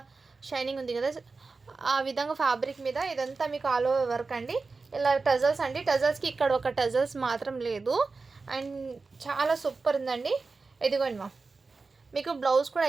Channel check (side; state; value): left; quieter; 4.1 dB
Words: షైనింగ్ ఉంది కదా, ఆ విధంగా ఫ్యాబ్రిక్ మీద ఇదంతా మీకు ఆల్ ఓవర్ వర్క్ అండి. ఇలా టజల్స్ అండి. టజల్స్కి ఇక్కడ ఒక టజల్స్ మాత్రం లేదు. అండ్ చాలా సూపర్ ఉందండి. ఇదిగోండి మా మీకు బ్లౌజ్ కూడా